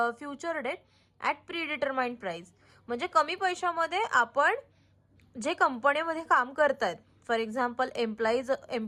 future date at predetermined price. म्हणजे कमी पैशामध्ये आपण जे कंपनीमध्ये काम करतायत, for example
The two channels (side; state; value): both; identical; correlation 1.00